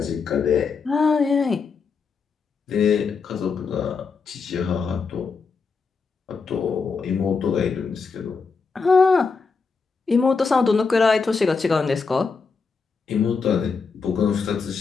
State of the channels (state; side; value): quieter; right; 5.0 dB